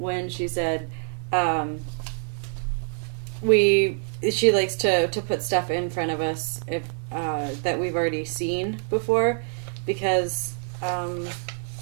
she said she likes to put stuff in front of us if that we've already seen before, because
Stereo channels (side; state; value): left; silent; 58 dB below the other